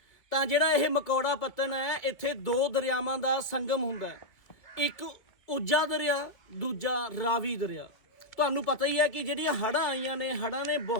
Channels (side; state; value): right; late; 2.0 ms